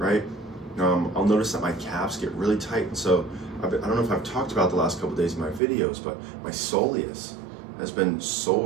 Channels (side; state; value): left; drops out; at 5.6 s